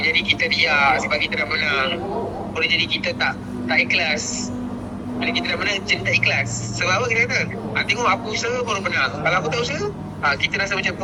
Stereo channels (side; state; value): both; identical; correlation 1.00